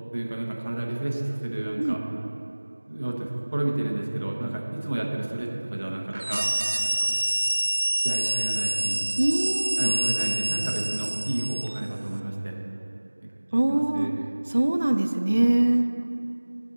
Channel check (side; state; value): both; inverted; correlation -1.00